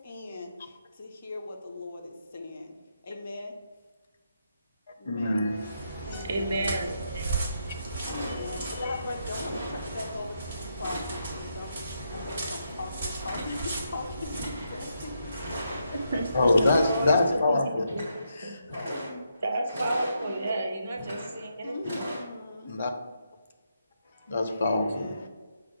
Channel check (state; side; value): inverted; both; correlation -0.80